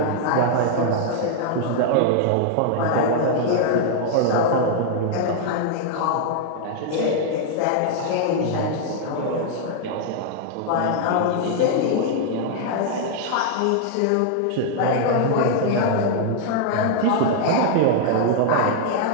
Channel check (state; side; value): different; both; correlation -0.01